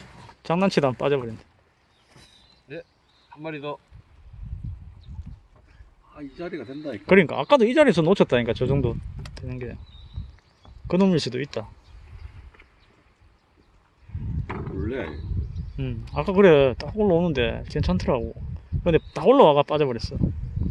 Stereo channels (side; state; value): both; identical; correlation 1.00